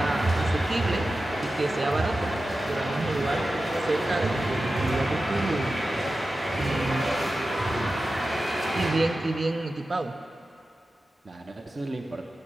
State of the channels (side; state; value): both; normal; correlation 0.93